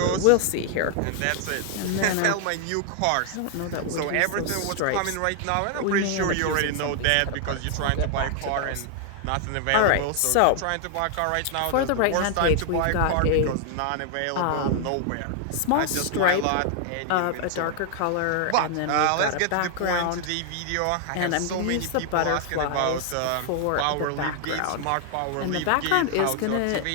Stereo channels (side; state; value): both; different; correlation 0.00